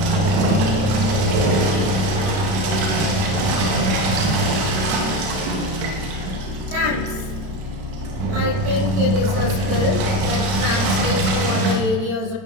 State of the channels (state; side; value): late; left; 31 ms